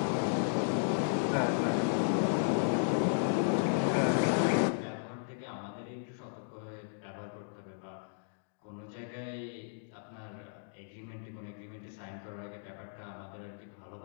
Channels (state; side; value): silent; right; digital silence